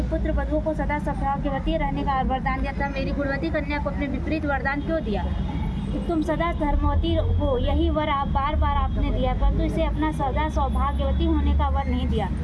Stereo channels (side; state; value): both; identical; correlation 1.00